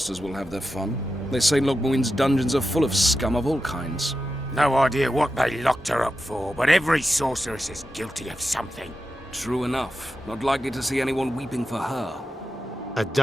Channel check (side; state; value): both; normal; correlation 0.90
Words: will have their fun. They say Logmuin's dungeons are full of scum of all kinds. No idea what they locked her up for, but every sorceress is guilty of something. True enough. Not likely to see anyone weeping for her. A